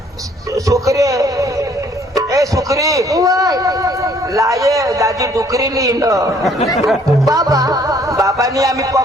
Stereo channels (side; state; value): both; normal; correlation 0.61